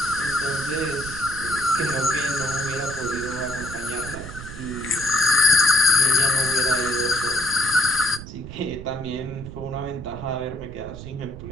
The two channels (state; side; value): noise; right; rumble, 11 dB below the sound